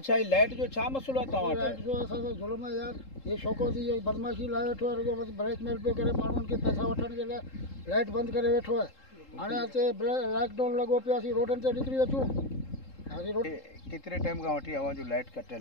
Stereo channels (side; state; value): right; late; 3.7 ms